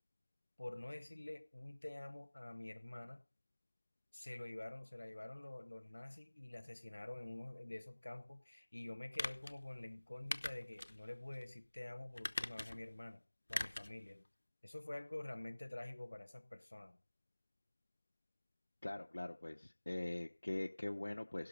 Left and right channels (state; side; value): inverted; both; correlation -1.00